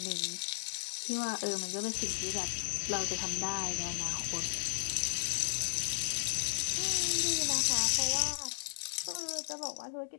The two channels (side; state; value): right; silent; digital silence